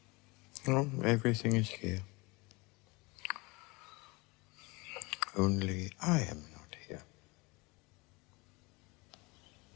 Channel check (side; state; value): right; quieter; 25.7 dB